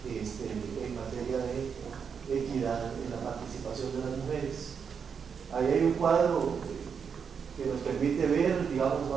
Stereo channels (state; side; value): quieter; left; 6.6 dB